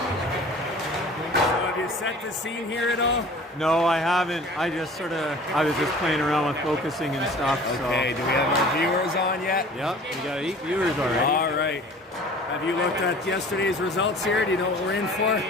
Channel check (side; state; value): both; normal; correlation 0.45